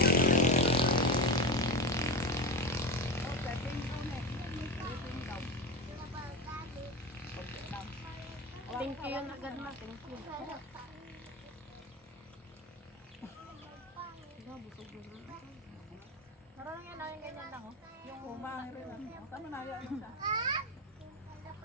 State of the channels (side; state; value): both; normal; correlation 0.20